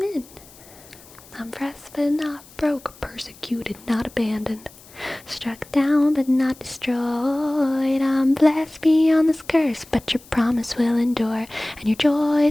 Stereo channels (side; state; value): left; noise; hiss, 23 dB below the sound